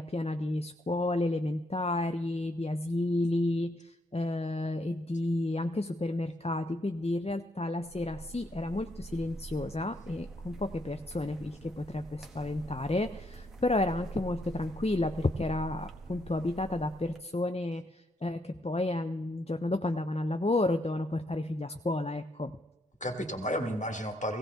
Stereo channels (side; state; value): both; normal; correlation 0.75